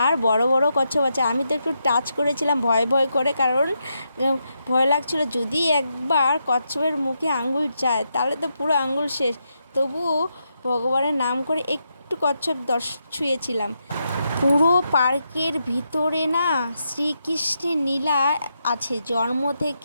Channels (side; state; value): both; inverted; correlation -0.83